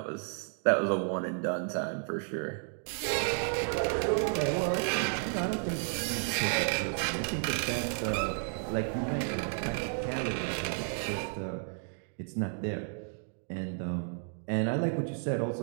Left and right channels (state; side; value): silent; left; 56 dB below the other